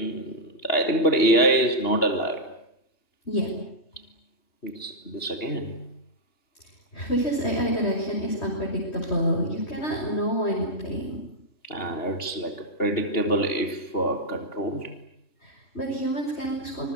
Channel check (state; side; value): late; right; 2.9 ms